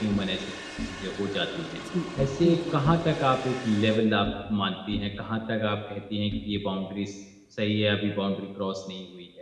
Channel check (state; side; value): identical; both; correlation 1.00